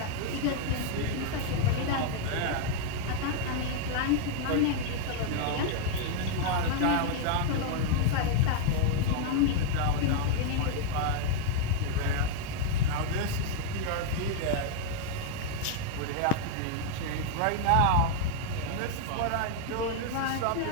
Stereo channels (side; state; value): both; different; correlation 0.00